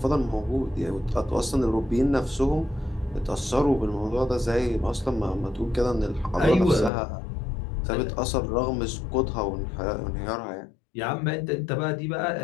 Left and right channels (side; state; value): right; drops out; at 6.9 s